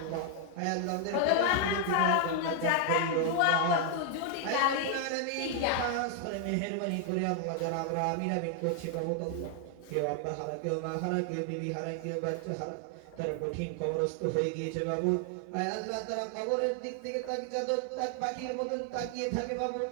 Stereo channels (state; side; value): different; both; correlation 0.00